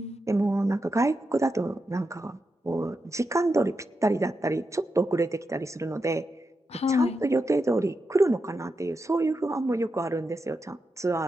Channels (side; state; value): both; normal; correlation 0.87